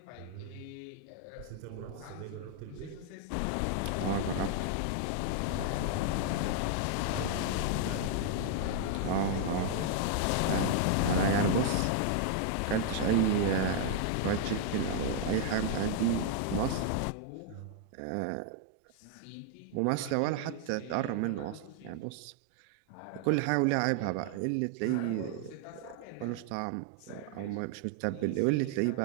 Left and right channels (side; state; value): both; different; correlation 0.00